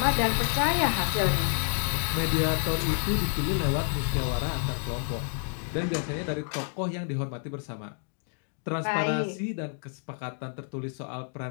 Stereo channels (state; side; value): silent; right; 59 dB below the other